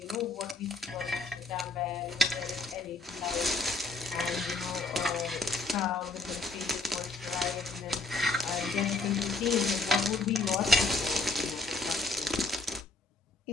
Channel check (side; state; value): right; quieter; 3.2 dB